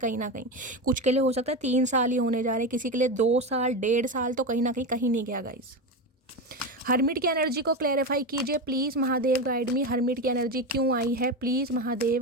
ना कहीं कुछ के लिए हो सकता है 3 साल ही होने जा रहे, किसी के लिए 2 साल 1.5 साल, तो कहीं ना कहीं नहीं गया गाइस। हर्मिट की एनर्जी को क्लैरिफाई कीजिए please Mahadev guide me. Hermit की एनर्जी क्यों आई है, please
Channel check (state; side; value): normal; both; correlation 0.18